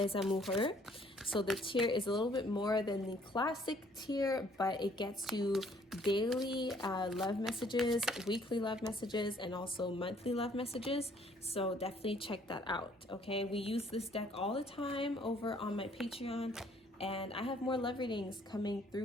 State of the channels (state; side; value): normal; both; correlation 0.61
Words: Amoureux. So the tier is a little bit more than the classic tier, but it gets you daily love messages, weekly love messages, and also monthly love messages. So definitely check that out, okay? We use this deck all the time over on my Patreon, and I have more love readings coming